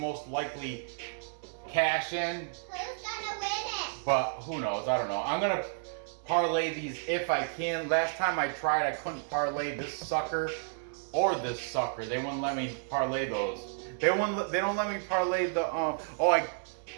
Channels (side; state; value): left; silent; 57 dB below the other